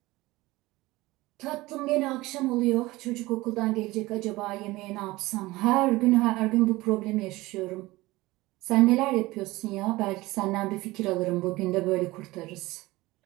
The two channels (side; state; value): left; quieter; 19.8 dB